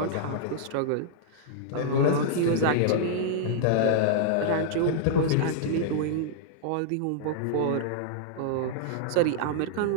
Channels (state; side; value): different; both; correlation -0.01